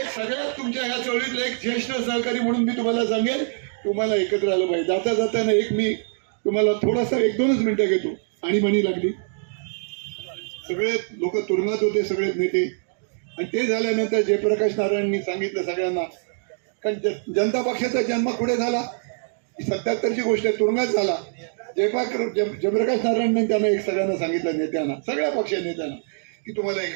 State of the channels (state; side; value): silent; left; digital silence